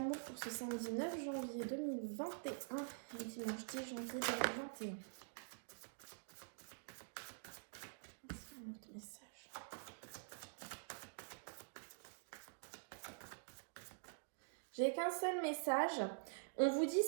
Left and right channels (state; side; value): silent; left; digital silence